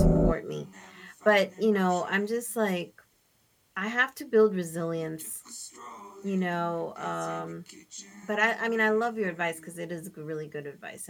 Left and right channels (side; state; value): both; identical; correlation 1.00